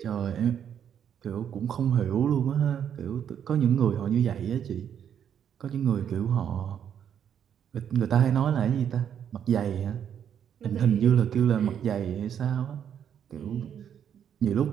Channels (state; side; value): quieter; left; 8.8 dB